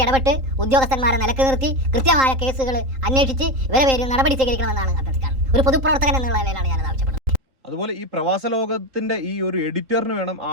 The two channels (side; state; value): left; late; 3.8 ms